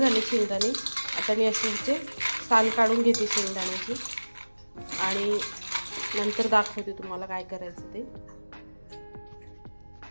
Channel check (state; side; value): inverted; both; correlation -1.00